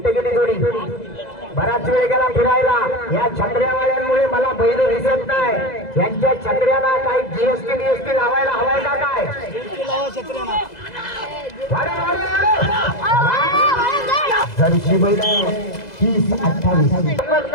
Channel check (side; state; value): right; late; 2.0 ms